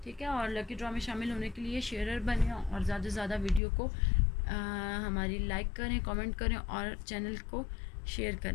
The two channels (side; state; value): right; drops out; at 3.6 s